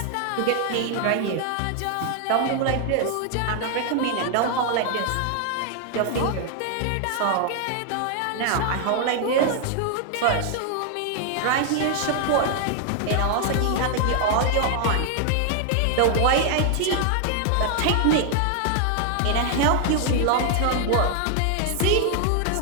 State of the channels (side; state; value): both; different; correlation 0.00